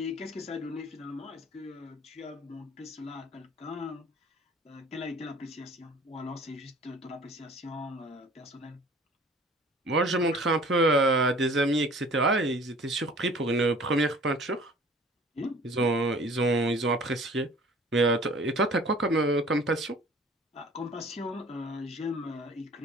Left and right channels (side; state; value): both; normal; correlation 0.48